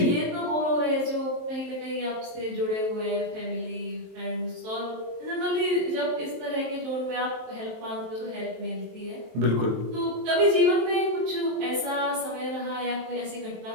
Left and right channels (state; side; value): late; left; 23 ms